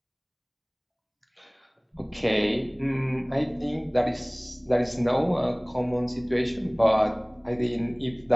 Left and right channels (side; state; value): both; identical; correlation 1.00